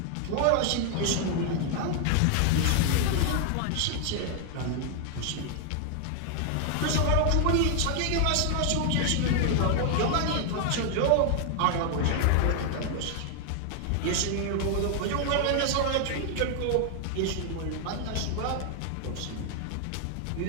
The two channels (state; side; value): different; both; correlation 0.00